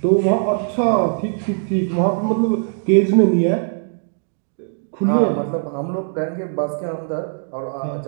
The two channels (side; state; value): left; silent; digital silence